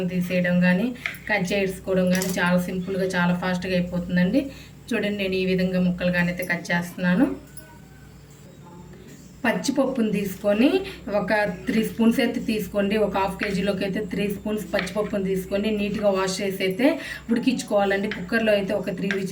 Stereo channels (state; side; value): identical; both; correlation 1.00